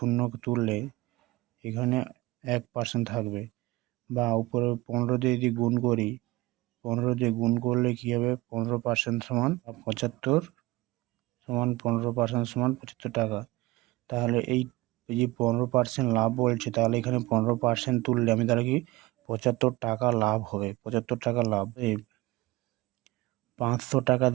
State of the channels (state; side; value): quieter; left; 20.3 dB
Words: তুললে এখানে 1% থাকবে, বা উপরে 15 দিয়ে যদি গুণ করি, 15 দিয়ে গুণ করলে কী হবে, 15% সমান 75, সমান 15% সমান 75 টাকা। তাহলে এই যে 15% লাভ বলছে, তাহলে এখানে 15% তুললে আমি তাহলে কি 75 টাকা লাভ হবে। 75 টাকা লাভ। এই 500 টাকা